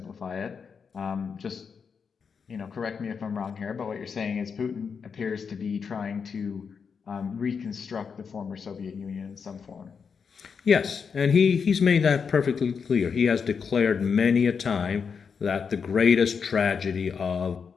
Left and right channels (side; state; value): right; quieter; 6.0 dB